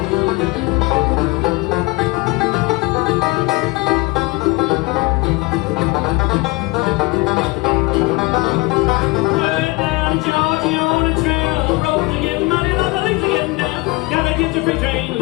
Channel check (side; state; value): right; quieter; 23.8 dB